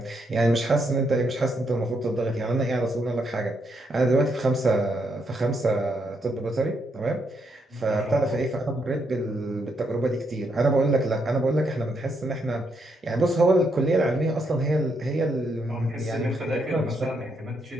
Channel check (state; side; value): normal; both; correlation 0.77